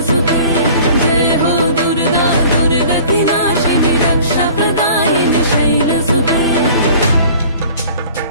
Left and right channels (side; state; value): both; inverted; correlation -0.48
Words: জয় হো দুর্গা, দুর্গা কি নাশিনী রক্ষা প্রদায়িনী শৈলসুতে।